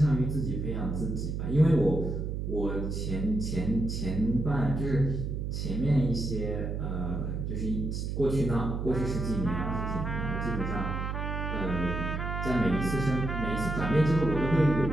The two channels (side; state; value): right; noise; hum, 3 dB below the sound